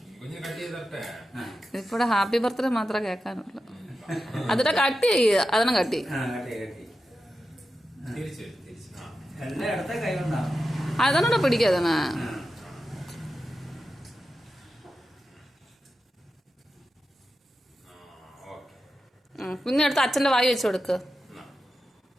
ഇപ്പോടെ ഹാപ്പി ബർത്ത്ഡേ മാത്രമേ കേൾക്കാനുള്ളൂ. അതിന്റെ കട്ട് ചെയ്യുക. അതിനെ കട്ടി അതാണോ പിടിക്കാതണ. കുഞ്ഞെടുത്ത് അച്ഛന്റെ വായി വെച്ച് കൊടുക്ക്.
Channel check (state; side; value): normal; both; correlation 0.91